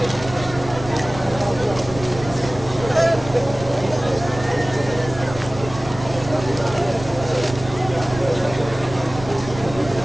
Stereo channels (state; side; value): noise; right; rumble, 13 dB below the sound